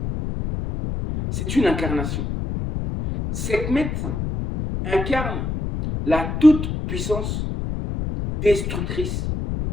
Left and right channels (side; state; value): left; noise; rumble, 3 dB below the sound